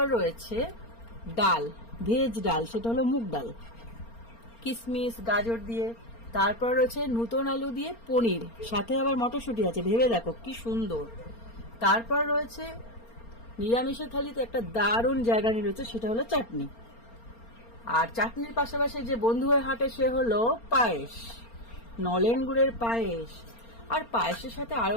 রয়েছে ডাল, ভেজ ডাল, সেটা হলো মুগ ডাল, কিশমিশ গাজর দিয়ে। তারপর রয়েছে নতুন আলু দিয়ে পনির, সাথে আবার মটরশুঁটি আছে, ভেবে দেখো কি সুন্দর। তারপর রয়েছে নিরামিষের থালিতে একটা দারুণ জায়গা নিয়ে রয়েছে, সেটা হলো চাটনি। আর চাটনির পাশাপাশি যে বন্ধু হয়ে হাঁটে সে হলো পায়েস, নলেন গুড়ের পায়েস। আর পায়েসের সাথে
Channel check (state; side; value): late; right; 4.3 ms